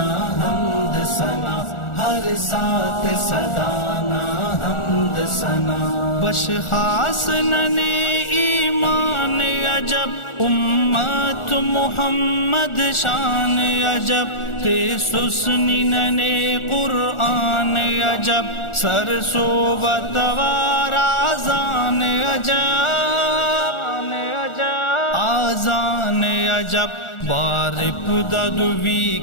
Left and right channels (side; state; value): right; late; 1.4 ms